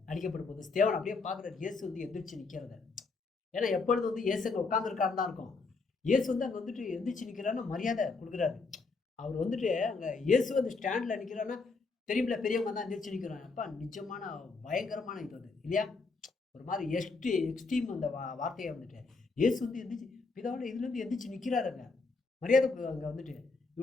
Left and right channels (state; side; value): quieter; right; 4.1 dB